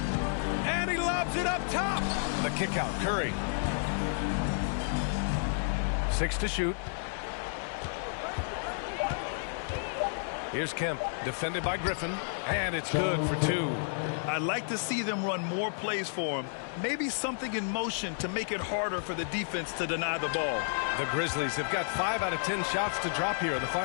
And he lobs it up top. The kick out. Curry. 6 to shoot. Here's Kemp, defended by Griffin, and it's good for 2. I'd like to see them run more plays for him. Maybe something in motion to make it harder for the defense to deny the ball. The Grizzlies have got 5 out of 10 shots to drop here in the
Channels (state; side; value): silent; right; digital silence